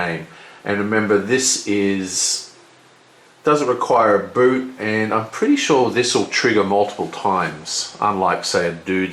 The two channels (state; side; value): identical; both; correlation 1.00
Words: And remember, this doesn't require a boot, and I'm pretty sure this will trigger multiple times, unlike, say, a